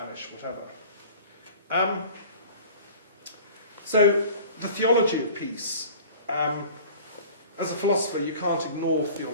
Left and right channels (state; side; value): inverted; both; correlation -0.44